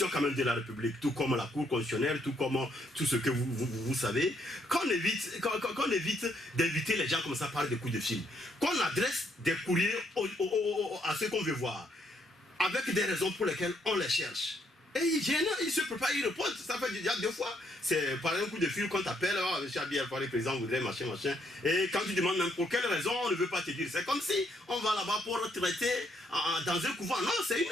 quand même de la République, tout comme la Cour constitutionnelle, tout comme tout ce que vous savez. Qu'on évite d'inviter les gens comme ça par des coups de fil. Qu'on adresse des courriers à ceux qu'on veut voir, avec des raisons pour lesquelles on les cherche. Et il se prépare, il répond, ça fait déjà 2 fois. C'est par un coup de fil qu'on t'appelle, oh, M. Abiy Alpha, le président voudrait machin. Et quand tu demandes même pour quelle raison, on ne veut pas te dire. C'est comme si on va là-bas pour traiter dans un couvent. Non, c'est une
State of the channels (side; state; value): both; normal; correlation 0.72